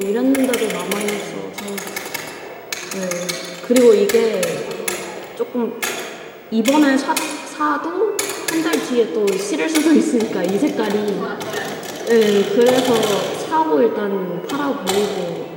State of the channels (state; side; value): identical; both; correlation 1.00